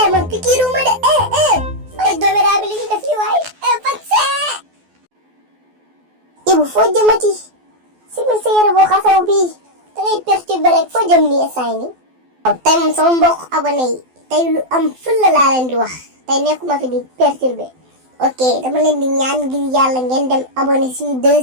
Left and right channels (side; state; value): left; late; 12 ms